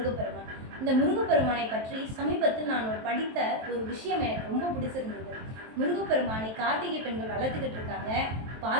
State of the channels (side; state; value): left; late; 23 ms